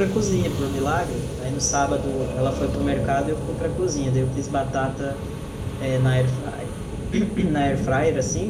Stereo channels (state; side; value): identical; both; correlation 1.00